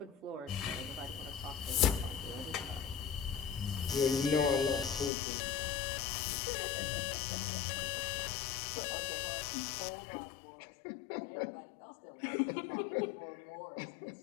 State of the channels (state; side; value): drops out; right; at 5.1 s